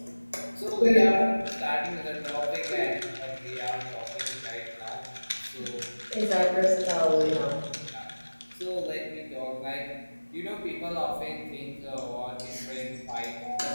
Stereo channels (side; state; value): both; inverted; correlation -1.00